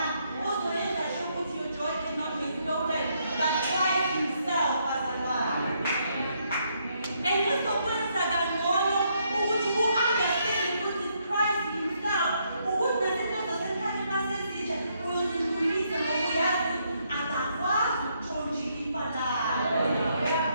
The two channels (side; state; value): both; inverted; correlation -0.74